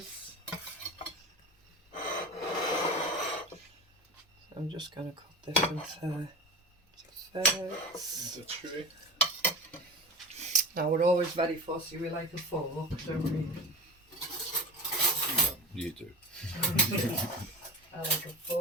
So I'm just going to cut this into thirds. It's a tree. Now we're always very fussy, we like a fork, don't we? You do. I like a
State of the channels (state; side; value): normal; both; correlation 0.29